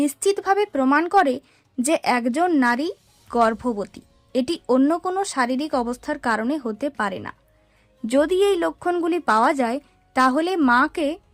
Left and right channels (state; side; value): identical; both; correlation 1.00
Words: প্রমাণ করে যে একজন নারী গর্ভবতী। এটি অন্য কোনো শারীরিক অবস্থার কারণে হতে পারে না। যদি এই লক্ষণগুলি পাওয়া যায় তাহলে মাকে